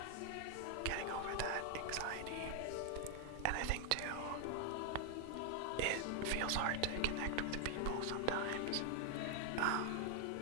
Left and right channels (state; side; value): different; both; correlation 0.00